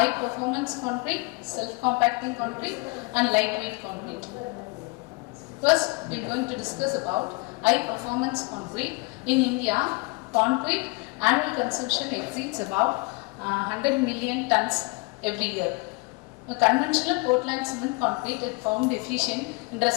performance concrete, self-compacting concrete, and lightweight concrete. First, we are going to discuss about high performance concrete. In India, concrete annual consumption exceeds about 100 million tons every year. A conventional Portland cement concrete is found efficient in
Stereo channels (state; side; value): quieter; right; 27.3 dB